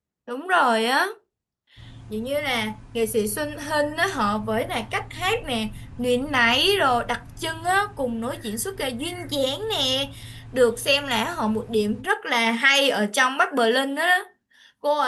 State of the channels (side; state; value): both; identical; correlation 1.00